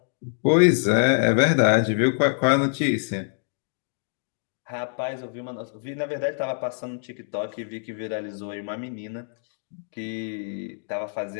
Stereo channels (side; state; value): right; silent; digital silence